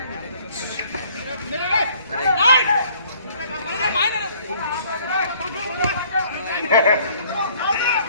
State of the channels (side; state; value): both; inverted; correlation -0.59